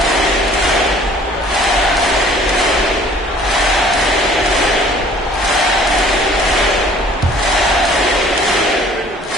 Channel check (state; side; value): normal; both; correlation 0.53